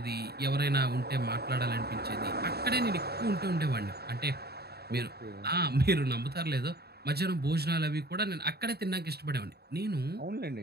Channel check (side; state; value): left; late; 0.47 ms